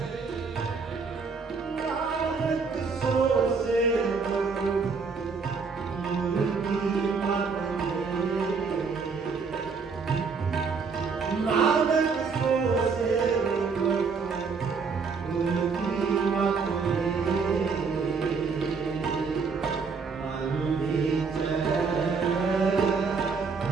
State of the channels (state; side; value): quieter; left; 5.1 dB